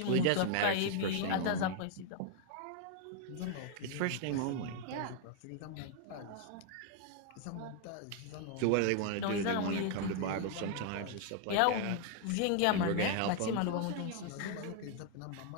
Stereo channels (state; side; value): different; both; correlation 0.00